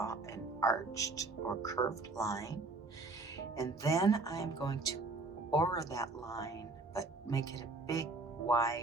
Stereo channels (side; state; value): left; quieter; 3.4 dB